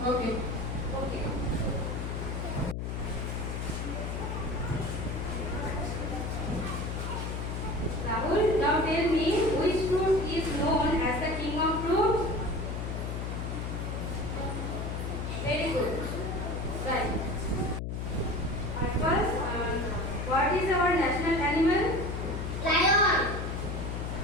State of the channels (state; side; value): noise; left; hum, 3 dB below the sound